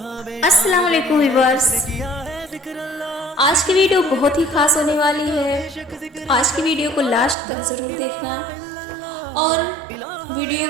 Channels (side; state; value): left; drops out; at 7.4 s